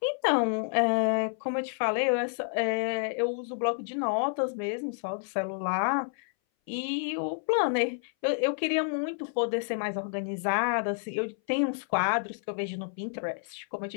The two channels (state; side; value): silent; right; 58 dB below the other